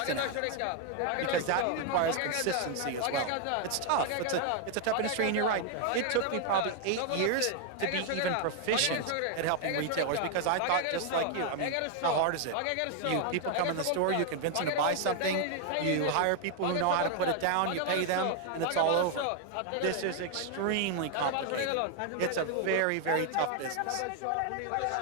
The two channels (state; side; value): different; both; correlation 0.00